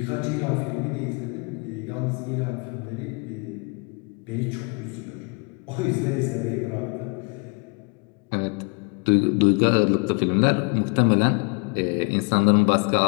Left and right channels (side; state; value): right; quieter; 33.8 dB